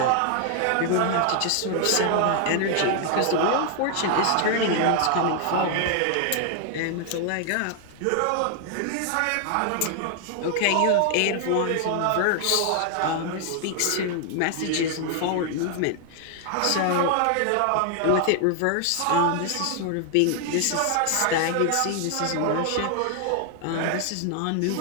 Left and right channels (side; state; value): both; different; correlation 0.00